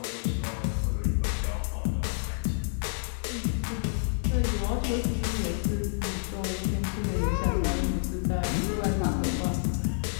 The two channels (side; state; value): right; silent; digital silence